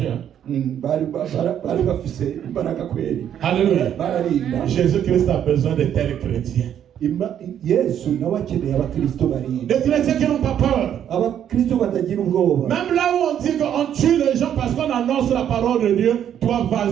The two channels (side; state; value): left; quieter; 9.8 dB